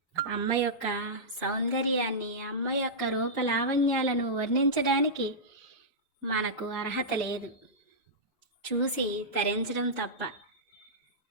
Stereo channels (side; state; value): both; normal; correlation -0.13